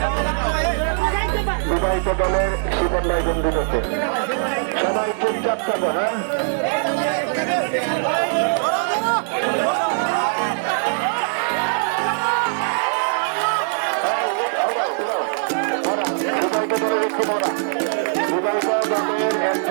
বিবাহিত দলের শিবন ভাই বন্ধু করতে সবাই চুপচাপ থাকো। হ্যাঁ, বিবাহিত দলের একটু মরা, বিবাহিত দলের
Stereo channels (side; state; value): left; silent; digital silence